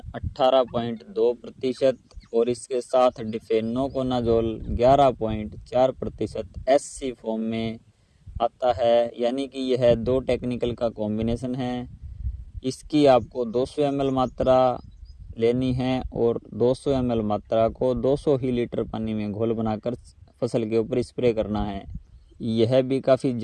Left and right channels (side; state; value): both; identical; correlation 1.00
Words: 18.2% और इसके साथ डिफेनोकोनाजोल 11.4% SC फॉर्म में आता है, यानी कि यह 2 टेक्निकल का कॉम्बिनेशन है। इसकी आपको 200 ml मात्रा लेनी है और 200 ml मात्रा को 200 ही लीटर पानी में घोल बनाकर फसल के ऊपर स्प्रे करना है। यह भी काफ़ी